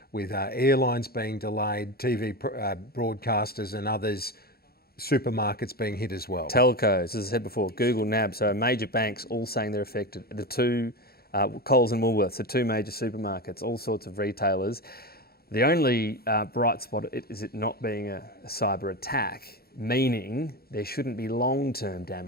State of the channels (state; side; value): late; right; 0.45 ms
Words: airlines being delayed, TV broadcasters and others, supermarkets being hit as well. Telcos, as I said before, Google, NAB, so major banks all saying they're affected. The two, Coles and Woolworths, the two major supermarkets, all sorts of retailers. The only bright spot is it not being a cyber attack, meaning there shouldn't be long-term